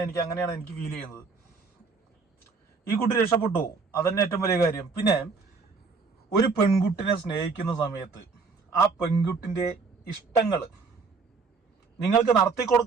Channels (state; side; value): quieter; left; 4.6 dB